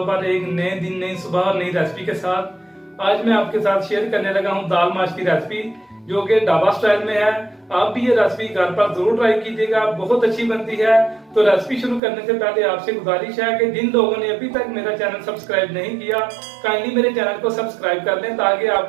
पर एक नए दिन, नई सुबह और नई रेसिपी के साथ। आज मैं आपके साथ शेयर करने लगा हूं दाल माश की रेसिपी, जो कि ढाबा स्टाइल में है। आप भी ये रेसिपी घर पर जरूर ट्राई कीजिएगा, बहुत अच्छी बनती है। तो रेसिपी शुरू करने से पहले आपसे गुजारिश है कि जिन लोगों ने अभी तक मेरा चैनल सब्सक्राइब नहीं किया, काइंडली मेरे चैनल को सब्सक्राइब कर लें, ताकि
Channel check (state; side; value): drops out; left; at 12.0 s